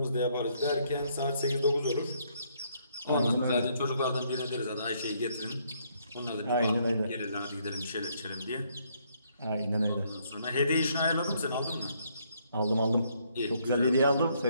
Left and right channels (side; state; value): both; inverted; correlation -0.70